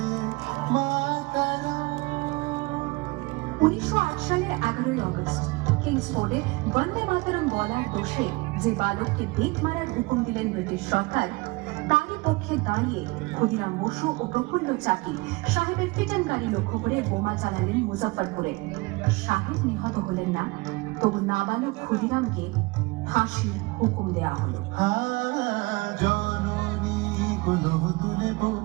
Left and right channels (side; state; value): left; quieter; 24.3 dB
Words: मातरम। 1908 সালের 11ই আগস্ট কিংসফোর্ডে বন্দে মাতরম বলার দোষে যে বালককে বেত মারার হুকুম দিলেন ব্রিটিশ সরকার, তারই পক্ষে দাঁড়িয়ে ক্ষুদিরাম বসু ও প্রফুল্ল চাকি সাহেবের ফিটন গাড়ি লক্ষ্য করে বোমা চালালেন মুজাফফরপুরে। সাহেব নিহত হলেন না, তবু নাবালক ক্ষুদিরামকে ফাঁসির হুকুম দেয়া হলো। জননী গুলো তুলে